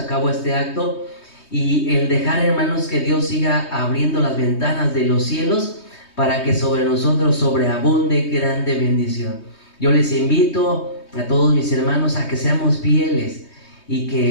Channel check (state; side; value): late; right; 3.2 ms